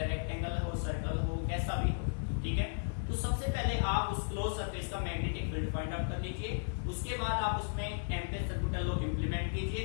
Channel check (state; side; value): silent; right; digital silence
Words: रेक्टेंगल हो, सर्कल हो, कैसा भी हो, ठीक है, तो सबसे पहले आप उस क्लोज सरफेस का मैग्नेटिक फील्ड फाइंड आउट कर लीजिए। उसके बाद आप उसमें एम्पियर सर्कुलर लॉ इंप्लीमेंट